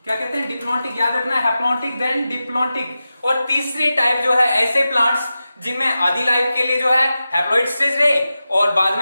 क्या कहते हैं? डिप्लॉन्टिक। याद रखना, हैप्लॉन्टिक देन डिप्लॉन्टिक। और तीसरी टाइप जो है ऐसे प्लांट्स जिनमें आधी लाइफ के लिए जो है हैप्लॉइड स्टेज रहे और बाद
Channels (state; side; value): inverted; both; correlation -0.93